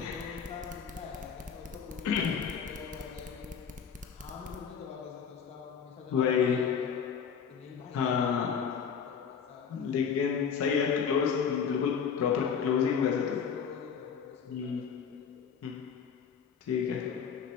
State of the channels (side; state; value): right; quieter; 7.0 dB